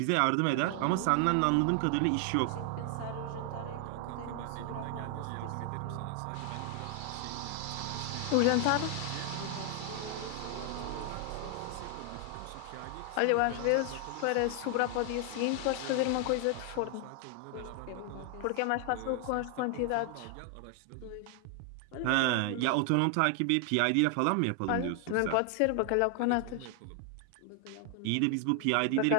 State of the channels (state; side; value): different; both; correlation 0.00